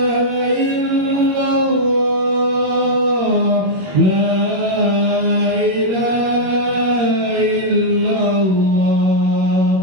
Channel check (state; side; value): late; left; 21 ms